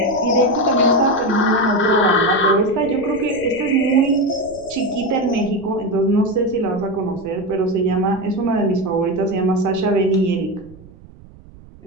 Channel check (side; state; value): right; noise; rumble, 22 dB below the sound